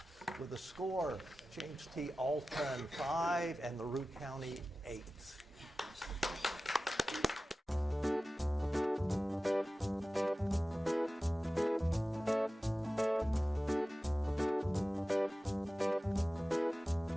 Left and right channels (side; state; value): both; normal; correlation 0.95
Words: with a score. James T. Alton 5 and LaRue County 8.